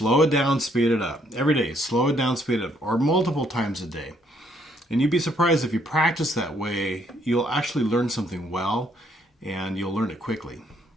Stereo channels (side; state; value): both; normal; correlation 0.69